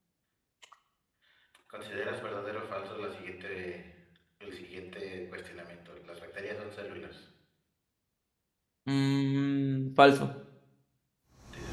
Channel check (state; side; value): identical; both; correlation 1.00